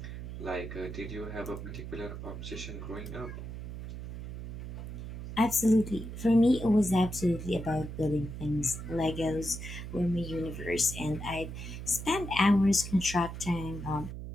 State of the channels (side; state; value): right; noise; hum, 8 dB below the sound